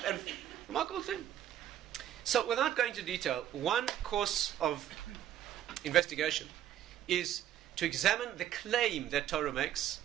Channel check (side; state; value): left; quieter; 11.4 dB